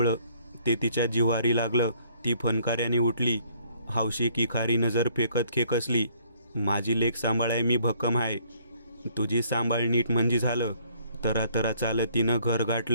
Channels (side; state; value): both; inverted; correlation -0.62